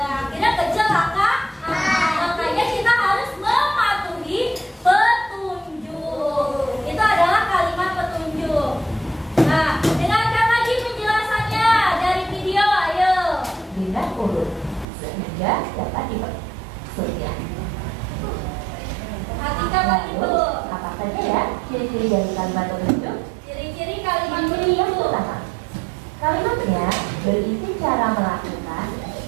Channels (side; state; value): left; drops out; at 14.9 s